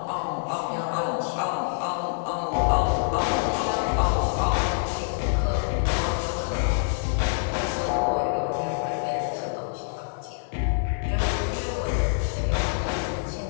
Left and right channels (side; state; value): right; silent; 61 dB below the other